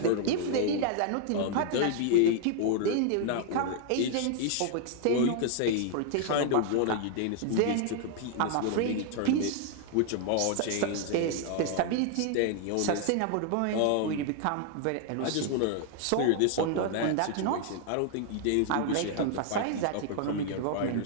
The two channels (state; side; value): different; both; correlation 0.00